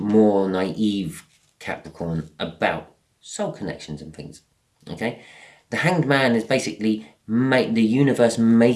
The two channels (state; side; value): identical; both; correlation 1.00